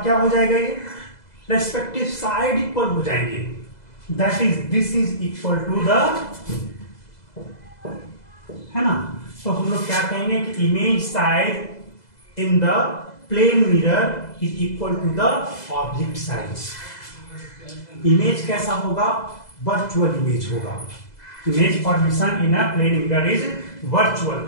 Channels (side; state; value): right; late; 2.0 ms